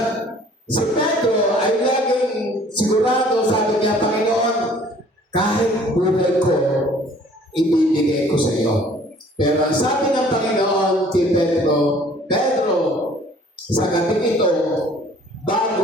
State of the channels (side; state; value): both; normal; correlation 0.55